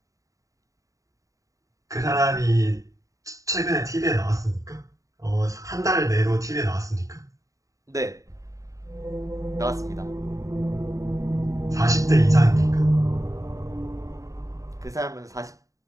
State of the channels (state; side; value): late; left; 0.16 ms